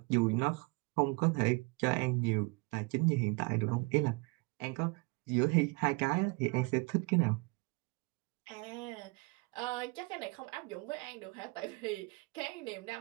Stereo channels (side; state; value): left; quieter; 28.4 dB